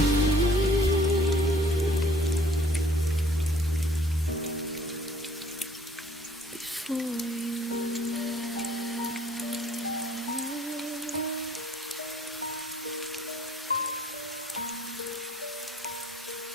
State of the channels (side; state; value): both; normal; correlation 0.57